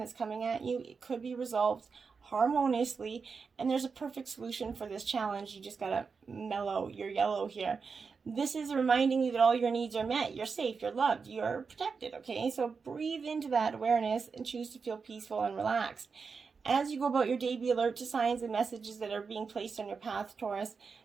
coming at you, it could be resolved harmoniously, and there's a perfect solution for this challenge. You just gotta mellow your yellow here. This is reminding you that all your needs are met. You're safe, you're loved, you're protected, okay? So breathe into that awareness and choose to feel peaceful and relaxed. As you go about your day, be alert to signs and messages that are being placed on your path, Taurus.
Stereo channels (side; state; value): left; quieter; 5.2 dB